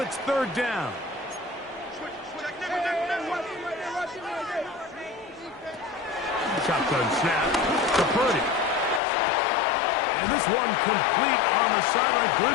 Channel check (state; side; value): drops out; right; at 9.0 s